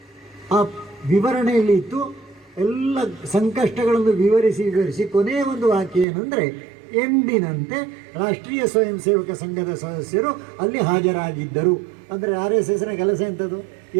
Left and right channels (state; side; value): drops out; left; at 6.1 s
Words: ಆ ವಿವರಣೆಯಲ್ಲಿ ಇತ್ತು, ಎಲ್ಲ ಸಂಕಷ್ಟಗಳನ್ನು ವಿವರಿಸಿ ಕೊನೆಯ ಒಂದು ವಾಕ್ಯ ಏನಂದರೆ, ಎಂದಿನಂತೆ ರಾಷ್ಟ್ರೀಯ ಸ್ವಯಂ ಸೇವಕ ಸಂಘದ ಸದಸ್ಯರು ಅಲ್ಲಿ ಹಾಜರಾಗಿದ್ದರು. ಅಂದರೆ RSSನ ಕೆಲಸ ಎಂಥದ್ದು?